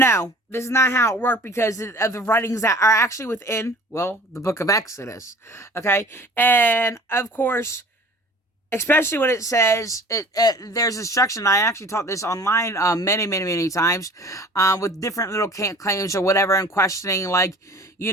this is not how it worked, because of the writings that are actually within, the book of Exodus. Okay? And, of course, especially when it says, there's instruction. I actually taught this online many, many, many times, with different little claims or whatever, and questioning, like,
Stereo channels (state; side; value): normal; both; correlation 0.46